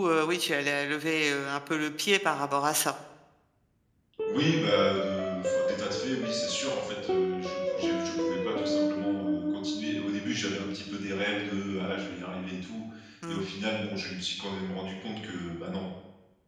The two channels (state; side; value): identical; both; correlation 1.00